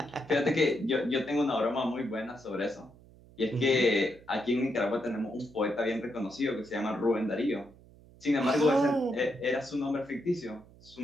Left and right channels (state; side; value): noise; right; hum, 24 dB below the sound